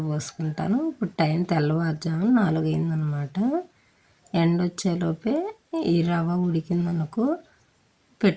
పోసుకుంటాను. ఇప్పుడు టైం తెల్లవారుజాము 4 అయిందనమాట. ఎండ వచ్చేలోపే ఈ రవ్వ ఉడికిందనుకో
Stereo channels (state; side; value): identical; both; correlation 1.00